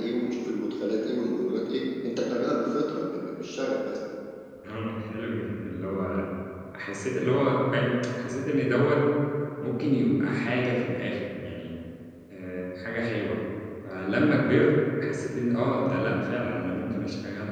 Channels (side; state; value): both; identical; correlation 1.00